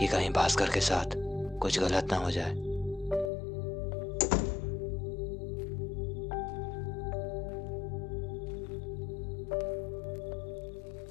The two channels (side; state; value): right; drops out; at 3.3 s